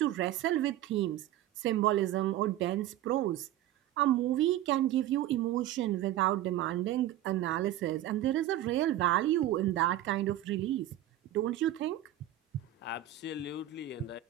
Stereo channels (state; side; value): quieter; left; 12.8 dB